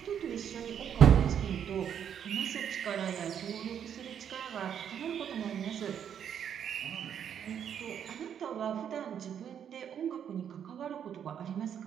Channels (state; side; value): quieter; left; 8.7 dB